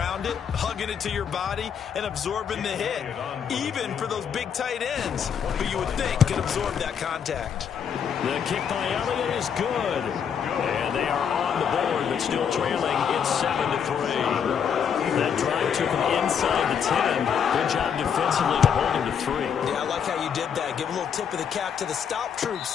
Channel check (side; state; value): right; quieter; 7.6 dB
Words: it, hugging it to your body, and absorbing the hit. Even for those big tight ends, who you would think could absorb that contact. The kick by Elliott is good. And they are on the board, but still trailing. It's 7-3. That drive took him inside the 10. Good job defensively to hold him to 3. Yeah, I like how you did that. Give a little tip of the cap to the stop troops